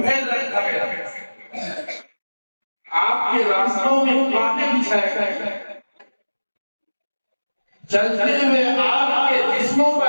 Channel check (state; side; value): inverted; both; correlation -1.00